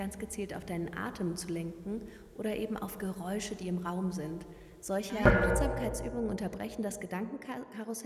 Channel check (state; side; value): identical; both; correlation 1.00